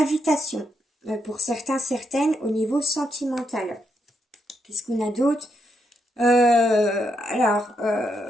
pour certains, certaines au niveau sentimental. Qu'est-ce qu'on a d'autre?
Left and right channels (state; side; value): normal; both; correlation 0.80